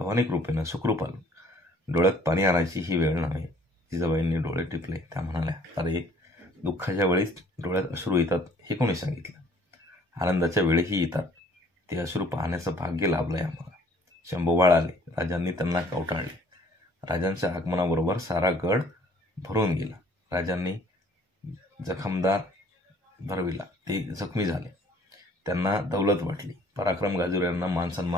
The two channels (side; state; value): both; normal; correlation 0.56